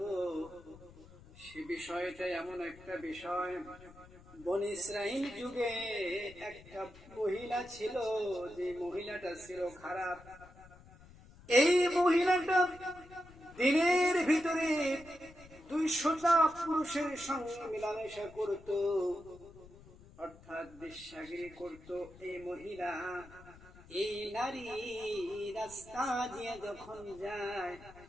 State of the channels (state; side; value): noise; left; rumble, 21 dB below the sound